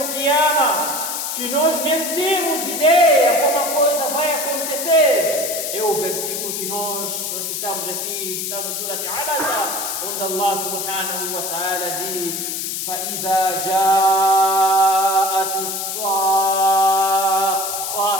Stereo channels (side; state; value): left; noise; hiss, 3 dB below the sound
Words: Qiyamah, que nós nem temos ideia como a coisa vai acontecer, é o versículo que nós recitamos aqui, está no Surat Abasa, onde Allah subhanahu wa ta'ala diz: فَإِذَا جَاءَتِ الصَّاخَّةُ.